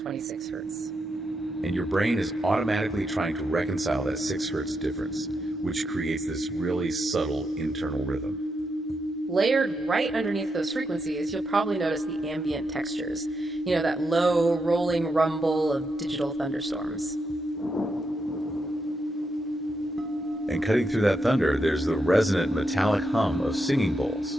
hertz. And your brain is automatically trying to reconcile that 6 hertz difference, which creates this really subtle internal rhythm. Layered right underneath those frequencies, you'll probably notice the ambient textures. That low, rolling rumble of digital thunderstorms. And cutting through that thunder, there's the resonant metallic hum of singing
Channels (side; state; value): both; normal; correlation 0.83